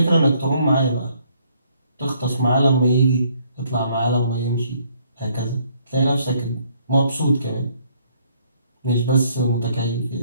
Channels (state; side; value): inverted; both; correlation -0.67